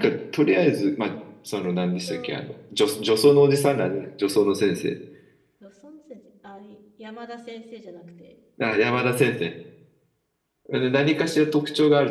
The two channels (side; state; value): both; identical; correlation 1.00